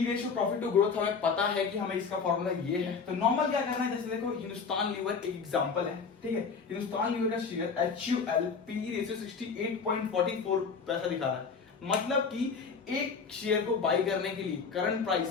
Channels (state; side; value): quieter; right; 5.4 dB